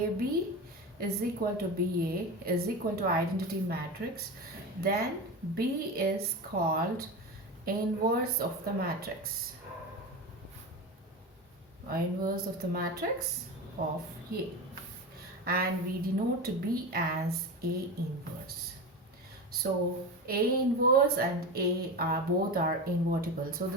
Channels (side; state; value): both; normal; correlation 0.24